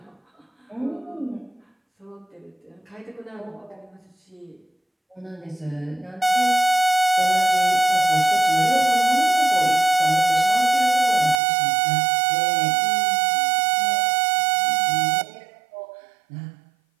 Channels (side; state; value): left; drops out; at 11.4 s